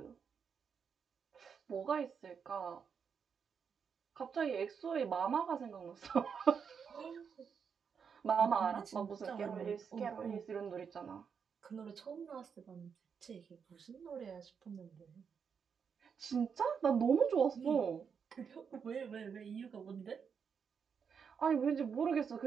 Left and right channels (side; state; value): left; quieter; 6.6 dB